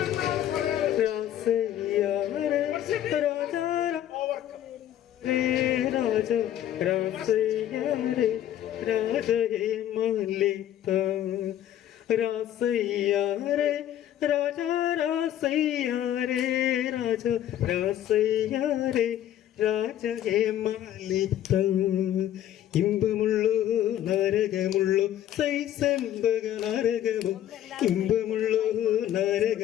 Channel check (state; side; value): quieter; right; 11.6 dB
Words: ഇമ്പമുള്ളോ നരകമുള്ളോ സൈസംബക നരകമോ, ഇമ്പമുള്ളോ